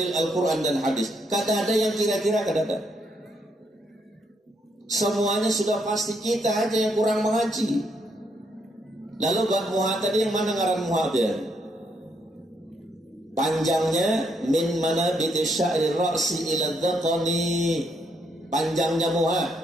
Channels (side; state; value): both; normal; correlation 0.74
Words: Al-Quran dan hadis. Kada ada yang kira-kira, kada ada. Semuanya sudah pasti, kita aja yang kurang mengaji. Lalu bab muha tadi yang mana ngaran muha dia? Panjangnya min manabiti sya'ri ra'si ila dhaqani. Panjangnya muha